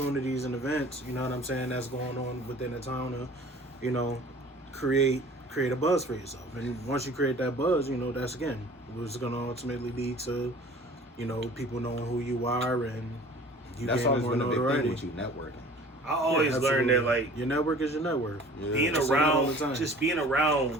and events. You know what I'm saying? That's going on within the town to, create a buzz for yourself. And once you create that buzz, that's again what's going to ultimately lead to, people knowing who you are and you That's getting always more been a big thing notoriety. with you networking. I always learned that like your network is your network. Yeah. being I say that all the around, time. just being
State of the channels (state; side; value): normal; both; correlation 0.47